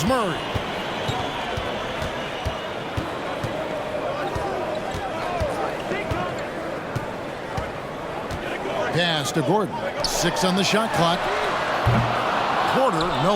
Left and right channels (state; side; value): identical; both; correlation 1.00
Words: Murray. Pass to Gordon. 6 on the shot clock. Porter, no